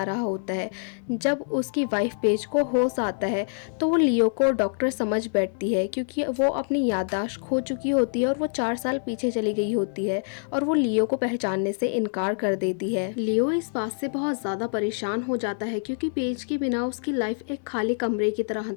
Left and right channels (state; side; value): silent; right; digital silence